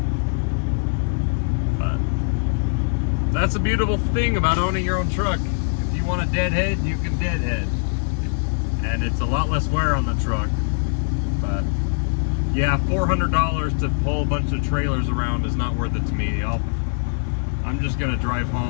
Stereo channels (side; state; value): right; silent; digital silence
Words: But that's a beautiful thing about owning your own truck. If you want to deadhead, you can deadhead, and it's a lot less wear on the truck. But yeah, $400 to pull a bunch of trailers around is not worth it to me. I'm just gonna drive